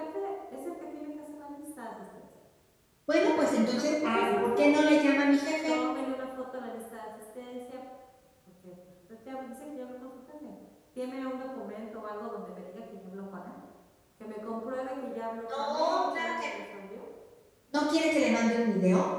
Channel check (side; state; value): both; identical; correlation 1.00